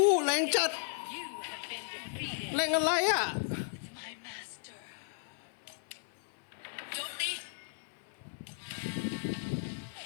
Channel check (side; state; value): right; silent; 54 dB below the other